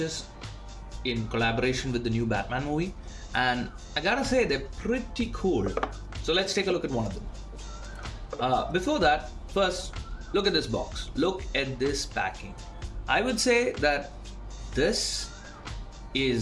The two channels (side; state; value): both; identical; correlation 1.00